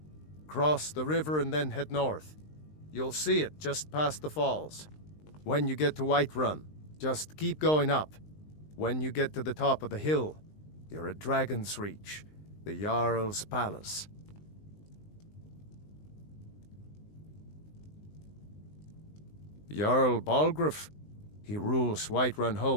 Cross the river and then head north. You'll see it just past the falls. When you get to Whiterun, just keep going up. When you get to the top of the hill, you're at Dragon's Reach, the Jarl's Palace. Jarl Balgruuf, he rules Whiterun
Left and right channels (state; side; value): late; right; 19 ms